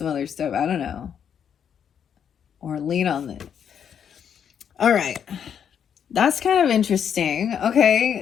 other stuff. I don't know. Or lean on it. All right. That's kind of interesting.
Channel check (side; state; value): right; quieter; 8.2 dB